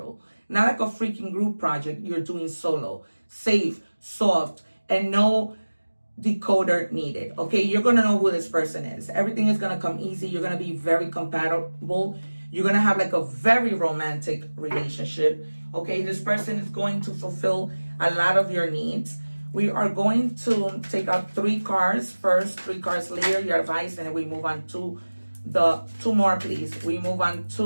Not like a freaking group project you're doing solo. Safe, soft, and no decoder needed. Okay, you're going to know who this person is. Everything is going to come easy. You're going to be very compatible. You're going to have like a very romantic relationship. Okay, this person is going to fulfill a lot of your needs. We are going to take out 3 cards first, 3 cards later, your advice, and then we move on to the 2 more, please. We move on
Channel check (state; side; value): inverted; both; correlation -1.00